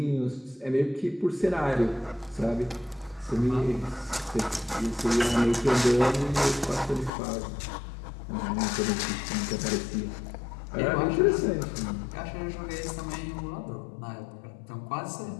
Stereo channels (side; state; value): right; drops out; at 7.1 s